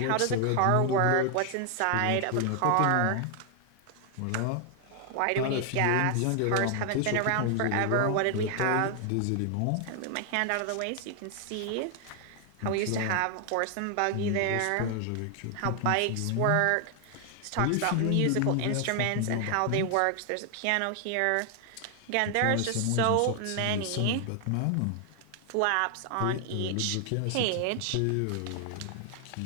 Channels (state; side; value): different; both; correlation 0.00